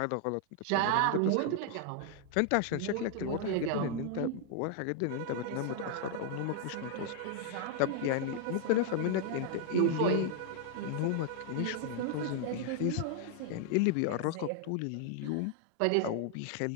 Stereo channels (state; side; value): different; both; correlation 0.00